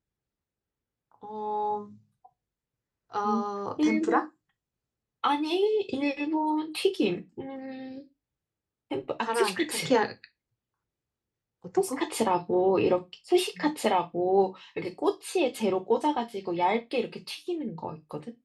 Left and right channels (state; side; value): identical; both; correlation 1.00